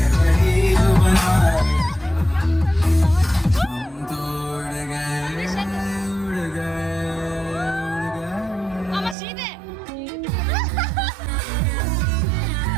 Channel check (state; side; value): drops out; left; at 9.2 s